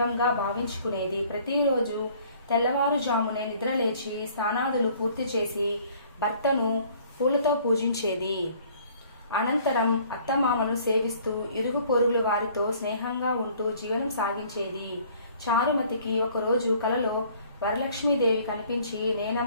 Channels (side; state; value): both; inverted; correlation -0.56